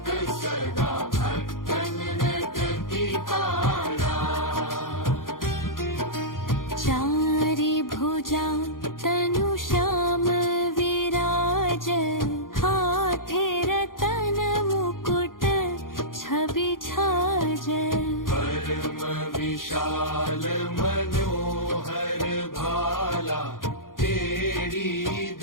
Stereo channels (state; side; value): late; right; 0.90 ms